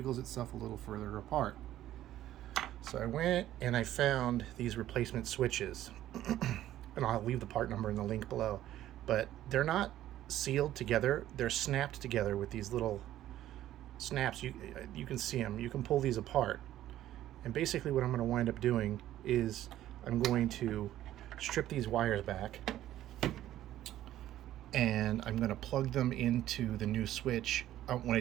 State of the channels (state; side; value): quieter; left; 13.1 dB